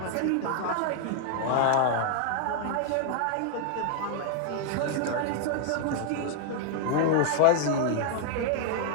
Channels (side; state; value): both; different; correlation 0.00